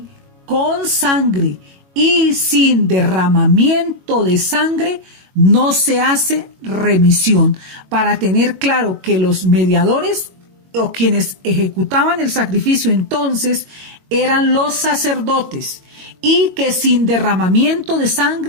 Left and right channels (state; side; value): late; left; 22 ms